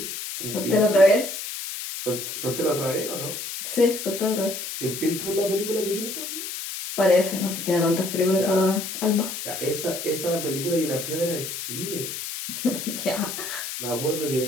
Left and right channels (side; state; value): left; noise; hiss, 6 dB below the sound